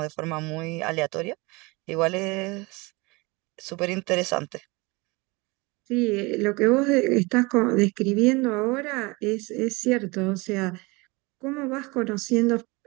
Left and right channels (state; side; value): quieter; left; 25.3 dB